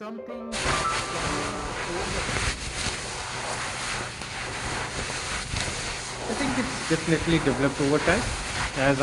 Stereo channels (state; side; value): identical; both; correlation 1.00